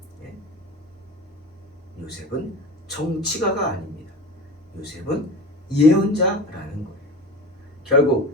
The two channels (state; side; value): normal; both; correlation 0.32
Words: 예? 요셉은 정치가가 아닙니다. 요셉은 예언자라는 거예요.